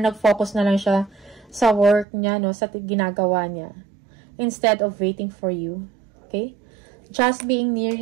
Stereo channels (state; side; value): drops out; left; at 2.1 s